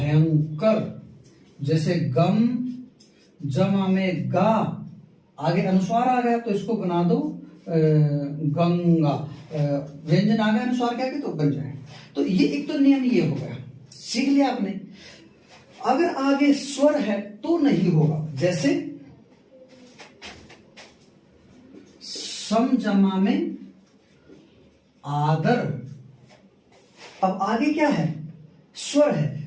जैसे गम जमा में गा, आगे अनुस्वार आ गया तो इसको बना दो गंगा। व्यंजन आ गया अनुस्वार क्या के तो बन जाए। तो ये एक तो नियम ये हो गया, सीख लिया आपने। अगर आगे स्वर है तो नहीं होगा। जैसे सम जमा में आदर, अब आगे क्या है, स्वर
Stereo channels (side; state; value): both; identical; correlation 1.00